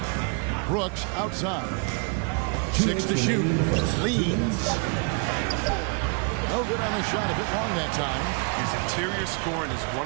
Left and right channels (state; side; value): quieter; left; 35.3 dB